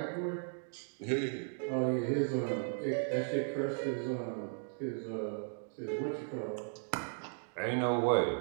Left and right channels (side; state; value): left; silent; digital silence